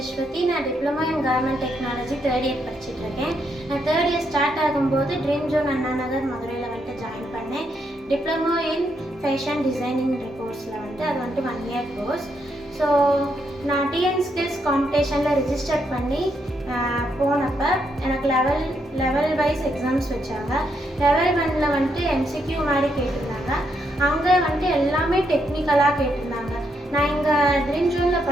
நான் diploma in garment technology third year படிச்சுட்டு இருக்கேன். நான் தேர்ட் இயர் ஸ்டார்ட் ஆகும்போது ட்ரீம் ஜோன் அண்ணா நகர் மதுரையில் வந்துட்டு ஜாயின் பண்ணேன். டிப்ளமோ இன் ஃபேஷன் டிசைனிங் கோர்ஸில் வந்துட்டு அது வந்துட்டு 1 year கோர்ஸ். ஸோ நான் டிஎன் ஸ்கில்ஸ் காம்படிஷனில் ரிஜிஸ்டர் பண்ணி போனப்போ எனக்கு லெவல் வைஸ் எக்ஸாம்ஸ் வச்சாங்க. லெவல் 1ல் வந்துட்டு எம்சிக்யூ மாதிரி கேட்டிருந்தாங்க. அங்கே வந்துட்டு எல்லாமே டெக்னிக்கலாக கேட்டிருந்தாங்க. நான் இங்கே ட்ரீம் ஜோனில்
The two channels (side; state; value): both; normal; correlation 0.78